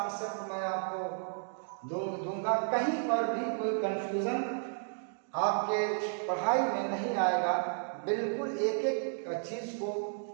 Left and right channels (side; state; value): left; silent; digital silence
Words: मैं आपको दूंगा। कहीं पर भी कोई कंफ्यूजन आपके पढ़ाई में नहीं आएगा। बिल्कुल एक एक चीज़ को